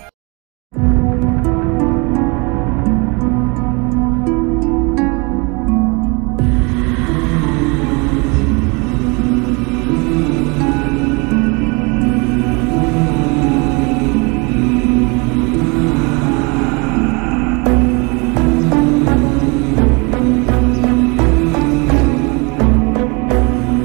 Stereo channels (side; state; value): left; quieter; 29.5 dB